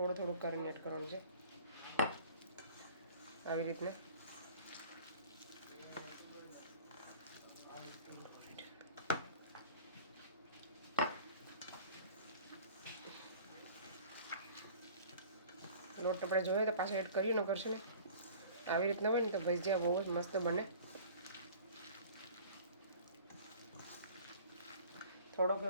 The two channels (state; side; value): inverted; both; correlation -0.46